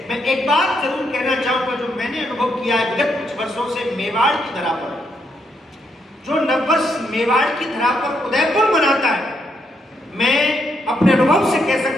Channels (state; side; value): normal; both; correlation 0.78